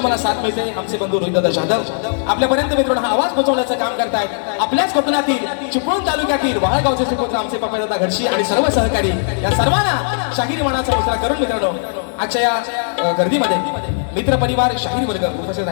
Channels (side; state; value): right; silent; digital silence